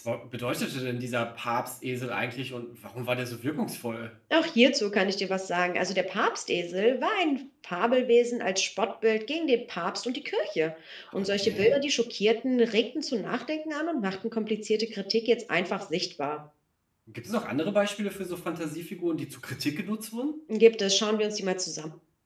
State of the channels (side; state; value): both; identical; correlation 1.00